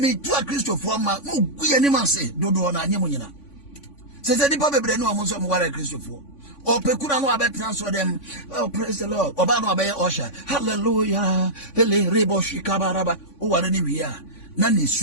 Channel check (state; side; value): late; right; 3.5 ms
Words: tu a Christopher ma mo guye ni ma se dodo na anyem nyina se di pa bebre no mo so mo ware Christopher o pekura no abetna so dem oh praise the Lord oba no abaye osha hallelujah ele rebo shikabaraba o ware ni wi a na ni